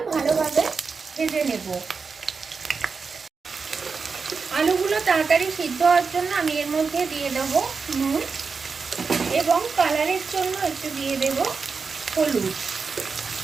ভালোভাবে ভেজে নেব। আলুগুলো তাড়াতাড়ি সিদ্ধ হওয়ার জন্য আমি এর মধ্যে দিয়ে দেব নুন এবং কালারের জন্য একটু দিয়ে দেব হলুদ।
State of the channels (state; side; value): quieter; left; 5.0 dB